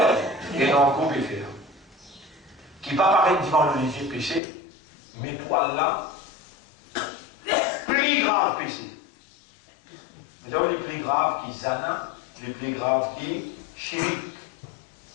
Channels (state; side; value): drops out; right; at 4.4 s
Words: et dans le groupe faire. Qui va paraître devant le léger péché, mais pour Allah, plus grave péché. Vous avez les plus graves qui zana, les plus graves qui chirik.